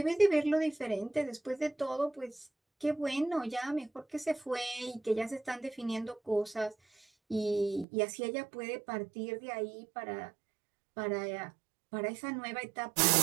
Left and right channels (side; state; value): left; drops out; at 7.9 s